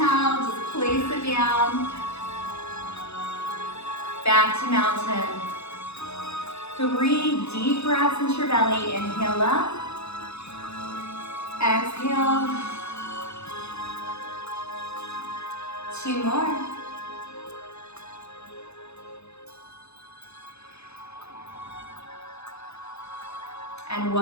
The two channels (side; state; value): right; late; 0.80 ms